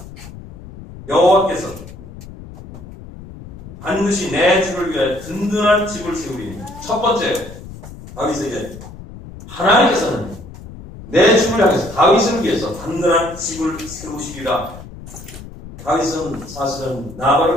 여호와께서 반드시 내 주를 위해 든든한 집을 세우리니. 첫 번째, 다윗에게 하나님께서는 내 주를 향해서 다윗을 위해서 든든한 집을 세우시리라. 다윗은 사실은 나발을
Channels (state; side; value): noise; left; rumble, 15 dB below the sound